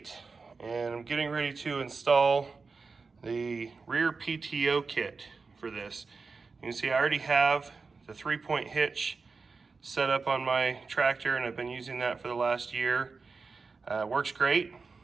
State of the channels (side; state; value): left; quieter; 4.5 dB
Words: and I'm getting ready to install the rear PTO kit for this. You can see I already have the 3-point hitch set up on my tractor, and I've been using that for the last year. Works great,